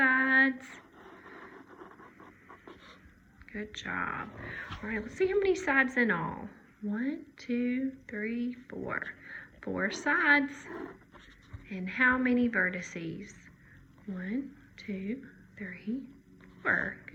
Good job. All right, let's see how many sides in all. 1, 2, 3, 4. 4 sides. And how many vertices? 1, 2, 3, 4.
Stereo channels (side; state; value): both; identical; correlation 1.00